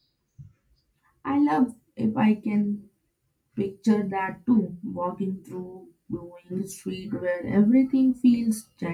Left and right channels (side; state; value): both; identical; correlation 1.00